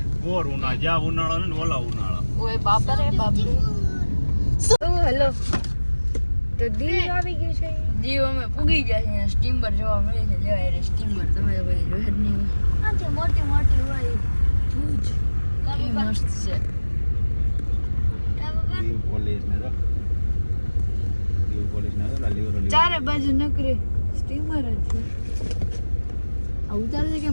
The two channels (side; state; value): both; inverted; correlation -1.00